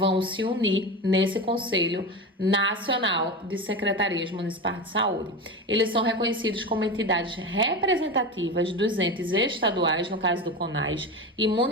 se unir nesse Conselho Nacional de Secretarias Municipais de Saúde. Eles são reconhecidos como entidades representativas representativas dos entes estaduais, no caso do CONAS, e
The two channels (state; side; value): normal; both; correlation 0.23